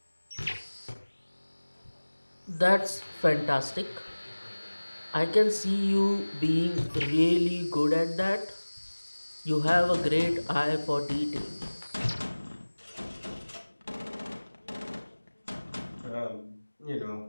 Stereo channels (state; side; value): inverted; both; correlation -1.00